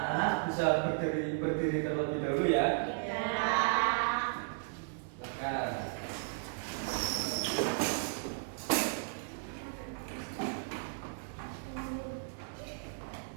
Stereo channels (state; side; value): silent; left; 55 dB below the other